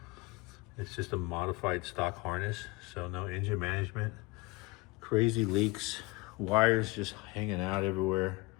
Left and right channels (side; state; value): right; quieter; 24.1 dB